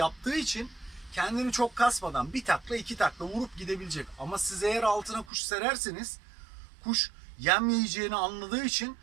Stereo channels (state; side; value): drops out; left; at 5.3 s